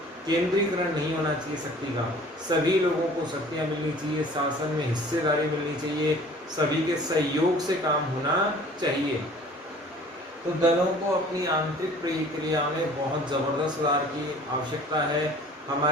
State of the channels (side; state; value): both; normal; correlation 0.49